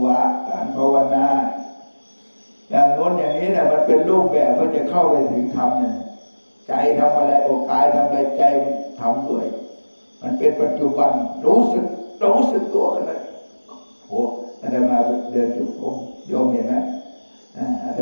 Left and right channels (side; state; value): both; inverted; correlation -1.00